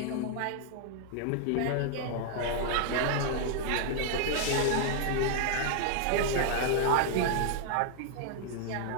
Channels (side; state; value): both; different; correlation 0.00